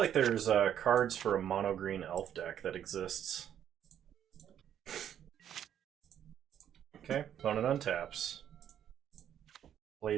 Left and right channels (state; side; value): quieter; left; 9.9 dB